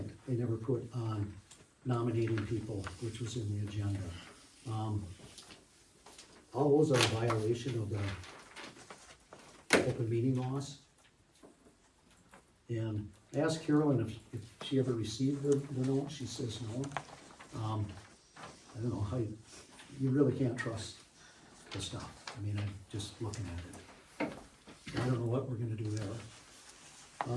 they never put on nominating people, which was in the agenda. All those are a violation of the open meeting laws. And I asked Carolyn if she ever received the note, she says no. I don't know how you really can't trust the stuff. I mean, I'm just looking at it. I don't know what we're gonna do there.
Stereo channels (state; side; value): identical; both; correlation 1.00